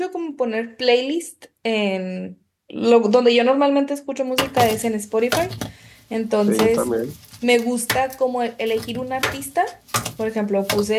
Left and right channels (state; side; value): identical; both; correlation 1.00